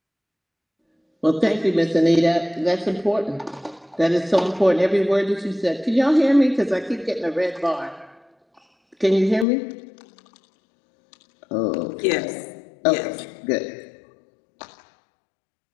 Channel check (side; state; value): right; drops out; at 9.5 s